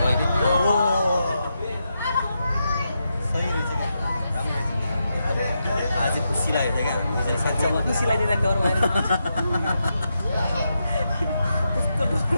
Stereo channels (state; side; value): inverted; both; correlation -0.85